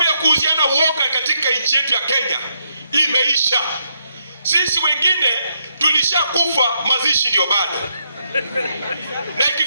ya kuuziana uoga katika nchi yetu ya Kenya imeisha. Sisi wengine tulishakufa, mazishi ndio bado. Na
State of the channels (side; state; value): both; inverted; correlation -0.77